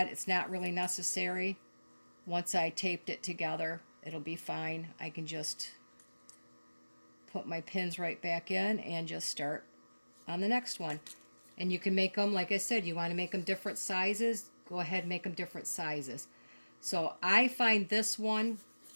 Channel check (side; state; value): both; inverted; correlation -1.00